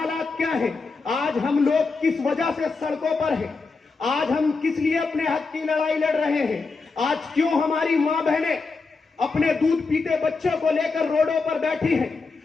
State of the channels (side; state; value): right; quieter; 4.2 dB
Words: क्या है। आज हम लोग किस वजह से सड़कों पर हैं। आज हम किस लिए अपने हक की लड़ाई लड़ रहे हैं। आज क्यों हमारी मां बहनें अपने दूध पीते बच्चों को लेकर रोडों पर बैठी